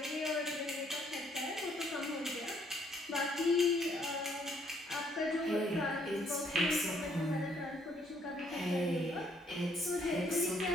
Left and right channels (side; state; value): both; normal; correlation 0.67